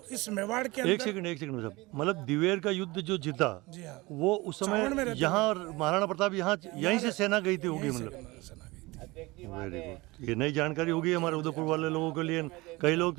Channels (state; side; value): quieter; left; 22.3 dB